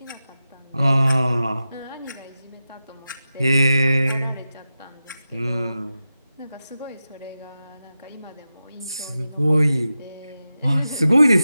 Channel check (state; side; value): inverted; both; correlation -0.92